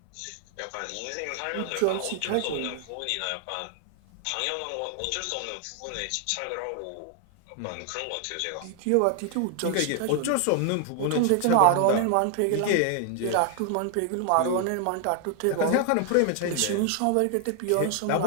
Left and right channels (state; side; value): different; both; correlation 0.00